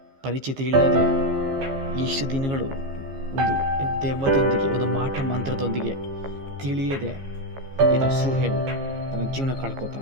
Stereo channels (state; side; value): late; left; 15 ms